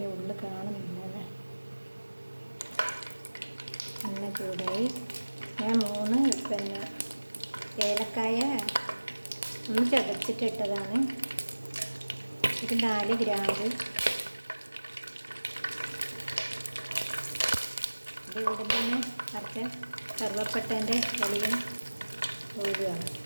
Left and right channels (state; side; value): inverted; both; correlation -1.00